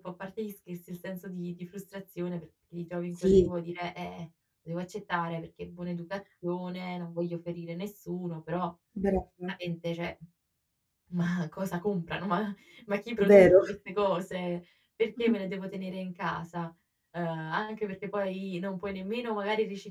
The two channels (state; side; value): identical; both; correlation 1.00